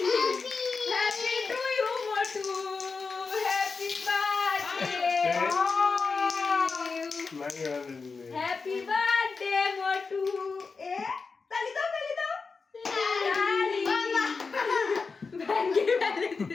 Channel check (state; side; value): quieter; right; 4.6 dB